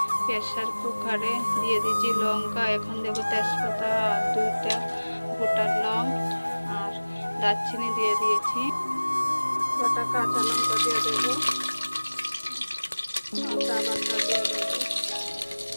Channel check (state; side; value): inverted; both; correlation -1.00